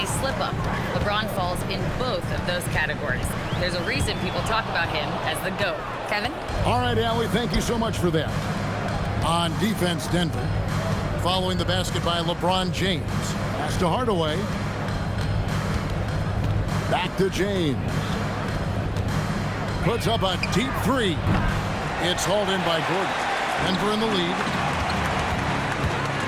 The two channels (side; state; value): both; identical; correlation 1.00